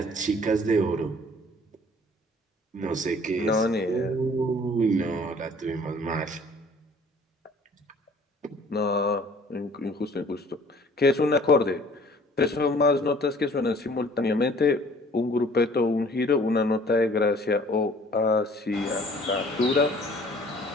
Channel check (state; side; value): normal; both; correlation 0.53